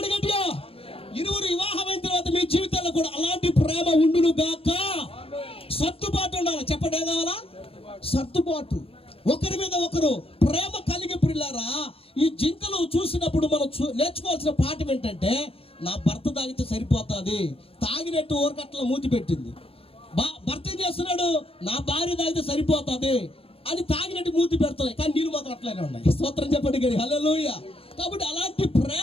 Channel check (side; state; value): right; late; 0.27 ms